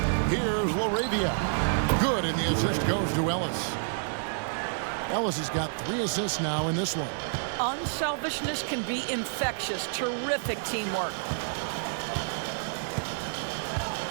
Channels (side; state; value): left; silent; digital silence